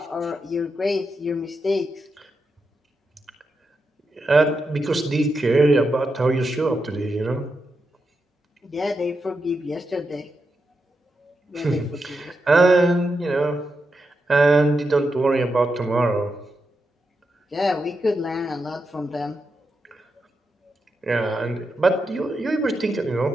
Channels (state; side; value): normal; both; correlation 0.86